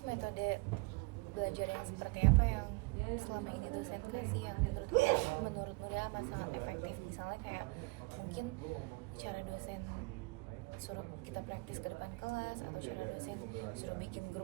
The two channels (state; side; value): quieter; left; 27.1 dB